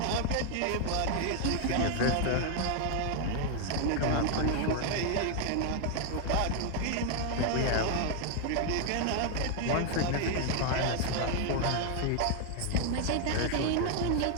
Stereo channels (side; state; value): both; different; correlation 0.00